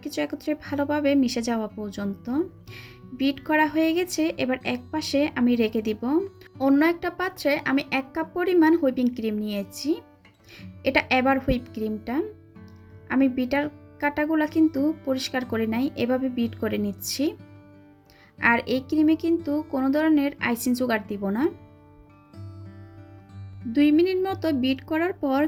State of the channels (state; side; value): identical; both; correlation 1.00